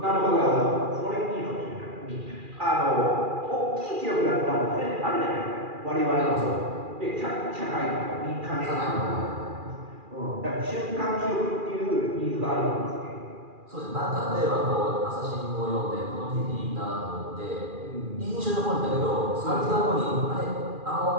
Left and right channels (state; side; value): late; left; 2.4 ms